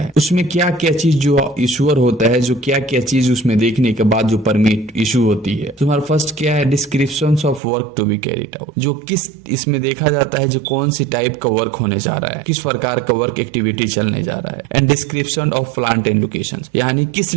उसमें क्या क्या चीज जो इशूअर होता है, जो क्या क्या चीज उसमें देखने के बाद जो परमिट इशू होती है, तो हमारा फर्स्ट क्या है, descriptions of work to be carried out. जो किस इसमें देखा जाता है जो कौन सी टाइप का वर्क होने जा रहा है, किस प्रकार का वर्क एक्टिविटी चलने जा रहा है, and description of plant and location, यानी किस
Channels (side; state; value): left; drops out; at 7.6 s